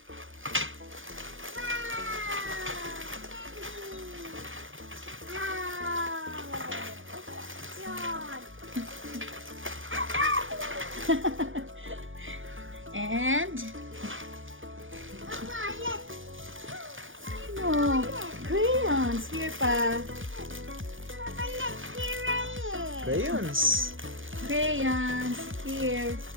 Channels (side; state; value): left; late; 0.58 ms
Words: And no crayons here pa. Crayons. Crayons here.